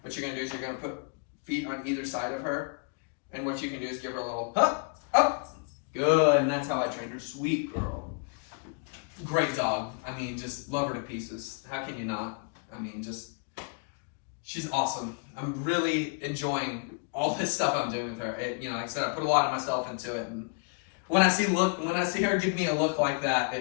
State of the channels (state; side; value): quieter; right; 36.7 dB